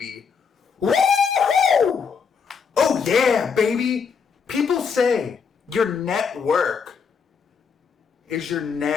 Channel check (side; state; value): right; quieter; 6.0 dB